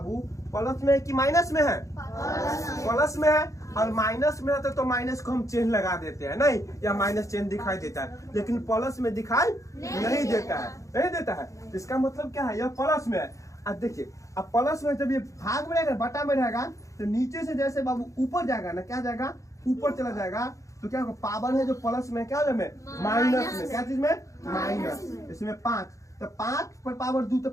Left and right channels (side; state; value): right; late; 0.15 ms